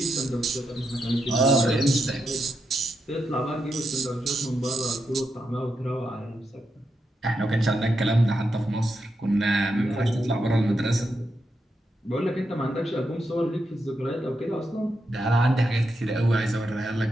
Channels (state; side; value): normal; both; correlation 0.84